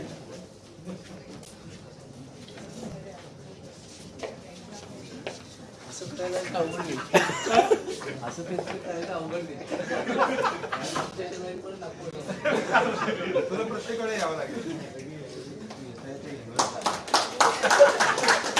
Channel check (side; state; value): both; identical; correlation 1.00